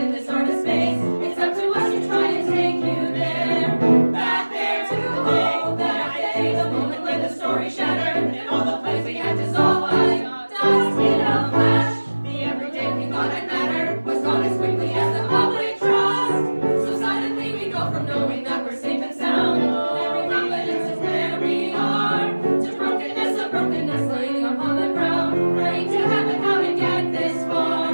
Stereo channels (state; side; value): inverted; both; correlation -1.00